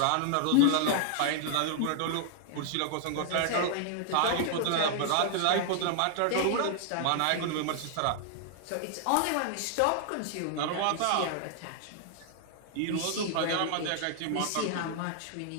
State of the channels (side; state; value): both; different; correlation 0.00